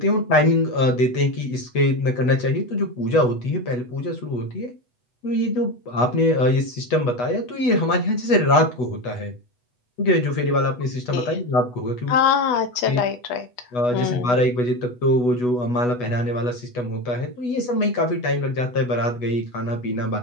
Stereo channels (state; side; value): late; right; 8.1 ms